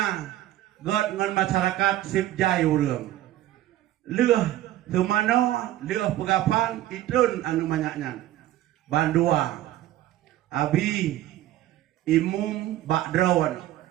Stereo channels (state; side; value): quieter; left; 14.1 dB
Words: god ngan masyarakat sipjai urang. Leuh semano leuh pegapan itun anu banyak nyan. Bandua abi imum bakdron.